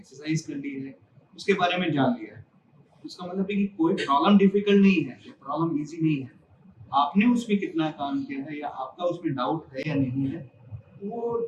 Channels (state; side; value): identical; both; correlation 1.00